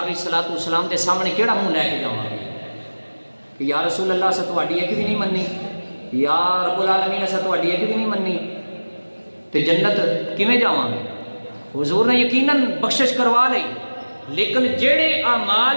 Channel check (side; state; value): both; inverted; correlation -1.00